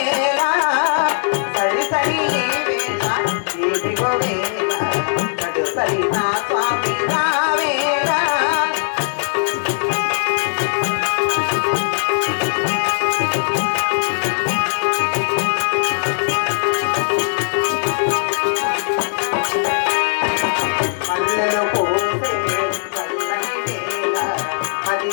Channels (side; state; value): right; silent; digital silence